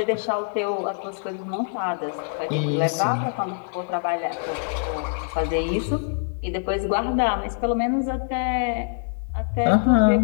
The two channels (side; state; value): right; silent; 62 dB below the other